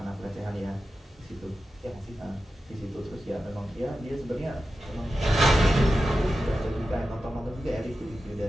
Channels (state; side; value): normal; both; correlation 0.92